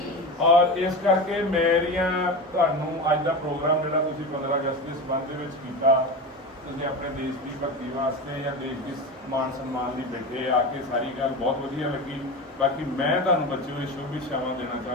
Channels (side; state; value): both; normal; correlation 0.25